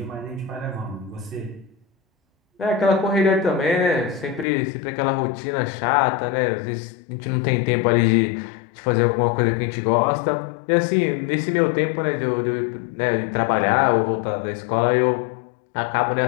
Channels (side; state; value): right; drops out; at 4.5 s